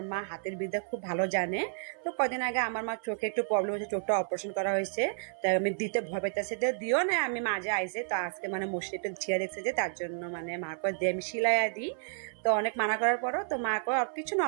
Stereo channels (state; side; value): silent; left; 57 dB below the other